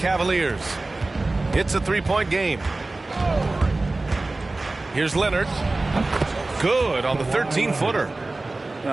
It's a three-point game. Here's Leonard. Good on the 13-footer.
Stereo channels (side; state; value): left; quieter; 3.1 dB